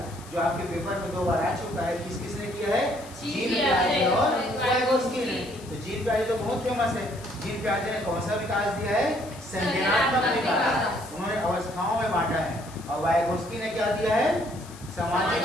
जो आपके पेपर में 2 बार आ चुका है। किस किसने किया है, जीन पियाजे और वाइगोत्स्की ने। तो जीन पियाजे तो बहुत फेमस है। जीन पियाजे ने कौन सा विकास दिया है, संज्ञानात्मक विकास, उन्होंने अवस्थाओं में बांटा है। और वाइगोत्स्की ने क्या दिया है, सामाजिक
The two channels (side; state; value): left; noise; hiss, 20 dB below the sound